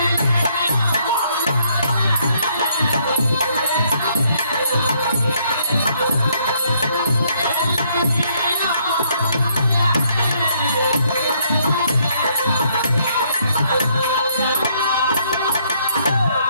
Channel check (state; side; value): inverted; both; correlation -0.69